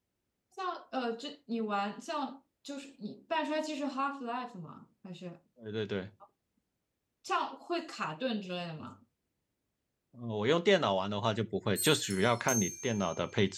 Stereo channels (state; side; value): identical; both; correlation 1.00